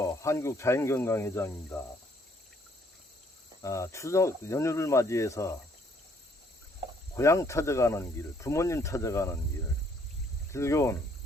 한국자연건강회장입니다. 추석 연휴를 맞이해서 고향 찾아가는 길, 부모님 찾아가는 길, 즐거운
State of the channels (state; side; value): normal; both; correlation 0.65